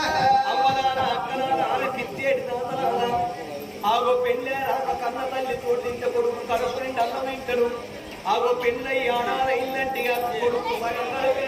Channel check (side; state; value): both; identical; correlation 1.00